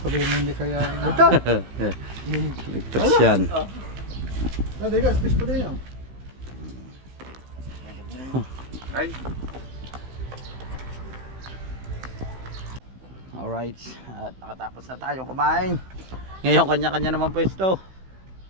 mo hindi kaya. Ligtas yan. Dali ka, space pa din yan. Ay. Alright, at nakatapos na tayong kumain. Ngayon kanya-kanya naman pwesto.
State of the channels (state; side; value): late; left; 16 ms